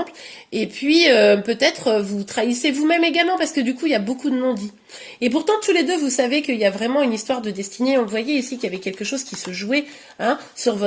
et puis peut-être vous trahissez vous-même également, parce que du coup, il y a beaucoup de non-dits. Et pourtant, tous les deux, vous savez qu'il y a vraiment une histoire de destinée. On le voyait ici, qu'il y avait quelque chose qui se jouait, hein, sur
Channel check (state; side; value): identical; both; correlation 1.00